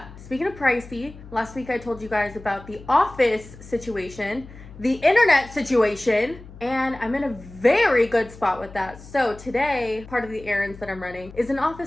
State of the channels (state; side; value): noise; left; hum, 18 dB below the sound